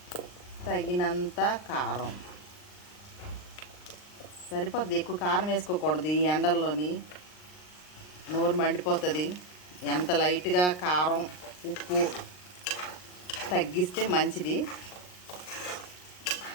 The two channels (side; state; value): right; late; 39 ms